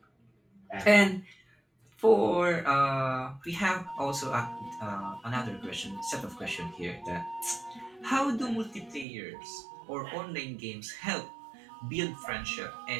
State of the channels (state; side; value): drops out; left; at 9.1 s